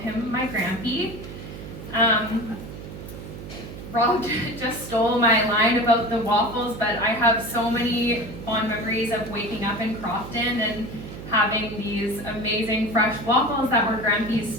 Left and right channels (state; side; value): noise; right; hum, 11 dB below the sound